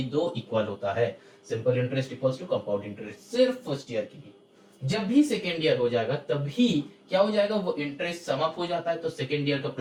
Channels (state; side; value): identical; both; correlation 1.00